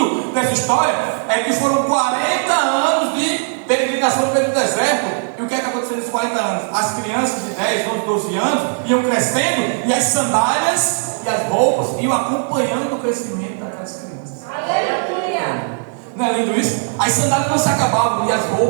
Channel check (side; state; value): left; silent; 59 dB below the other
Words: dessa história é que foram 40 anos de peregrinação pelo deserto. E o que é que aconteceu nesses 40 anos? As crianças de 10, 11, 12 anos iam crescendo, e as sandálias e as roupas iam acompanhando o crescimento daquelas crianças. Aleluia! Não é lindo isso? As sandálias não se acabavam e as